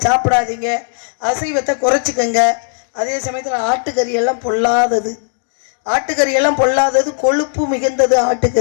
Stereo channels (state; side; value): silent; right; digital silence